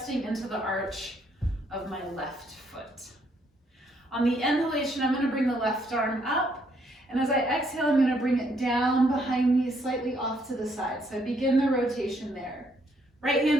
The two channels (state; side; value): normal; both; correlation 0.71